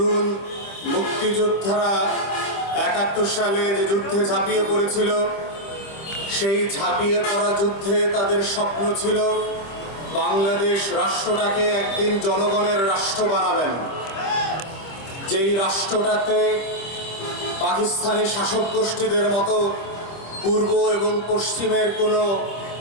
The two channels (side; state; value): right; late; 26 ms